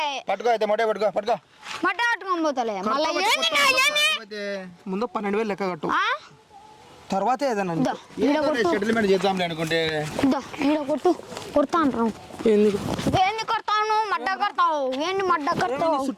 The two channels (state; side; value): identical; both; correlation 1.00